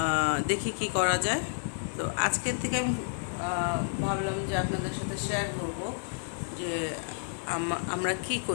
দেখি কি করা যায়। তো আজকের থেকে আমি ভাবলাম যে আপনাদের সাথে শেয়ার করব যে আমরা কি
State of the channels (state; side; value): silent; right; digital silence